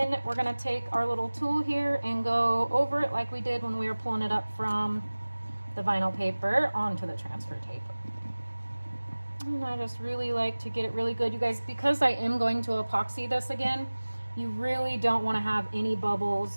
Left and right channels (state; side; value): inverted; both; correlation -1.00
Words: we're going to take our little tool here and go over it like we did when we were pulling it up from the vinyl paper onto the transfer tape. And I just really like to get it really good, you guys, because I am going to epoxy this again. You really don't want to have any